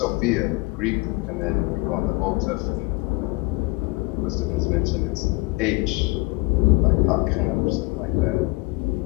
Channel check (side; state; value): right; quieter; 25.2 dB